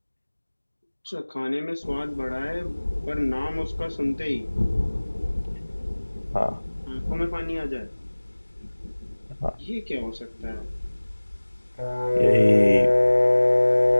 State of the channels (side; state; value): both; inverted; correlation -1.00